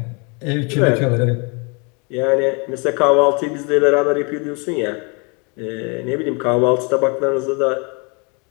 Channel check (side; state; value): right; quieter; 32.6 dB